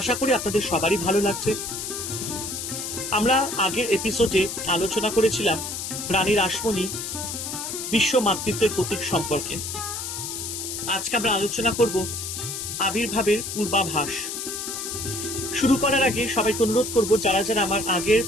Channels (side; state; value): left; noise; hiss, 5 dB below the sound